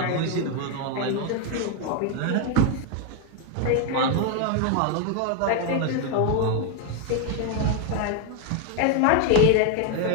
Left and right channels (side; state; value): both; different; correlation 0.01